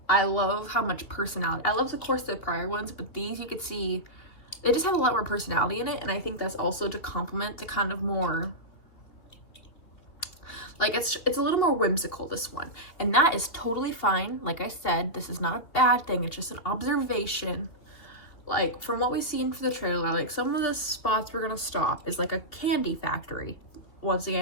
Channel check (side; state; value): right; late; 2.8 ms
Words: I love how much personality. I love, of course, the prior ones, but these you could see, they just have a lot more personality in it, and I think that's also to complement the kind of more, like, it's a little more whimsical, this one. And that is totally fine. Like I said, this is not a bad thing. It's just an observation. Like, from what we've seen for the trailer, like, some of the spots we're gonna stop is like a candy factory. Once